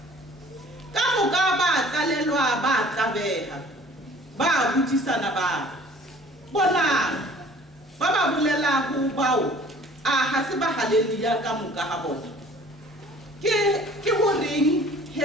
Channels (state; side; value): normal; both; correlation 0.51